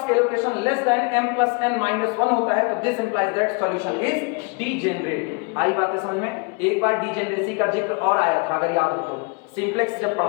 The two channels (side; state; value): right; quieter; 30.6 dB